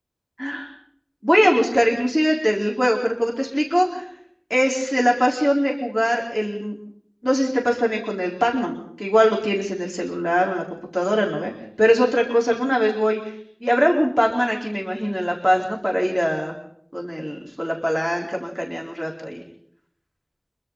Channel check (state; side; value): identical; both; correlation 1.00